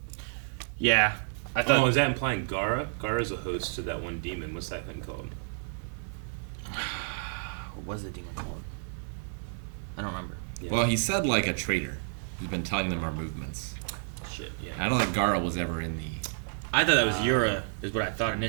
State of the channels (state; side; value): silent; left; digital silence